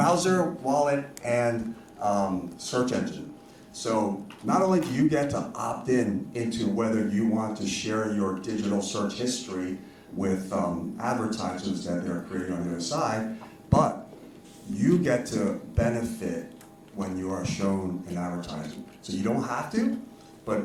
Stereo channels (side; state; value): both; identical; correlation 1.00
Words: wallet, and search engine. So not only do you get to opt into whether you want to share your digital search history with advertisers that they're creating on the other side, but you get to benefit when you are shown an advertisement. So you don't have to, but